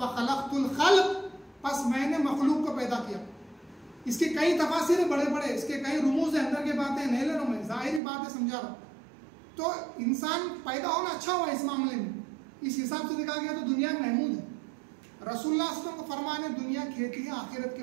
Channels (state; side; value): drops out; left; at 8.0 s